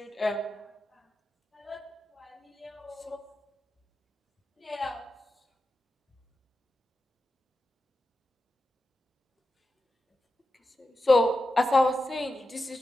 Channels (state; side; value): normal; both; correlation 0.90